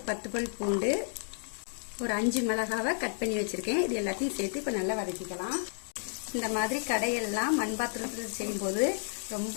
10 பல் பூண்டு, ஒரு 5 மிளகாவை கட் பண்ணி வச்சிருக்கேன். இது எல்லாத்தையும் சேர்த்து இப்போ நல்லா வதக்கிக்கலாம். இந்த மாதிரி கடையெல்லாம் மண் பாத்திரத்தில் செய்யும்போது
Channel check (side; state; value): right; silent; 57 dB below the other